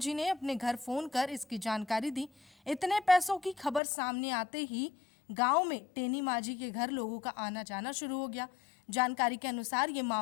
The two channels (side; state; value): right; drops out; at 3.8 s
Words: ने अपने घर फोन कर इसकी जानकारी दी। इतने पैसों की खबर सामने आते ही गांव में टेनी माझी के घर लोगों का आना जाना शुरू हो गया। जानकारी के अनुसार ये